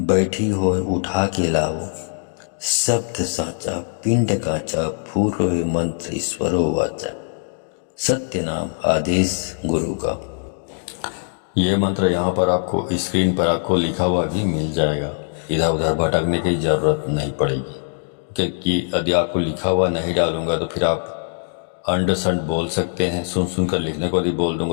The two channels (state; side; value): silent; right; 65 dB below the other